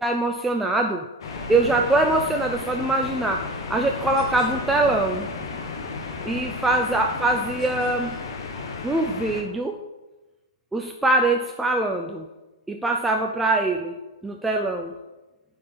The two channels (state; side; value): normal; both; correlation 0.37